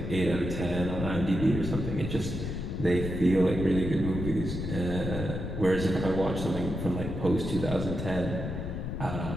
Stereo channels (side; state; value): left; noise; rumble, 5 dB below the sound